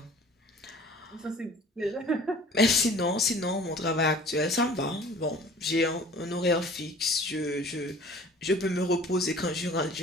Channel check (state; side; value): normal; both; correlation 0.48